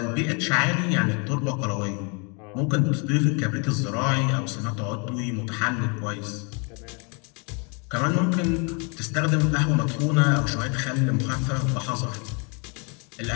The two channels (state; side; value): quieter; right; 34.2 dB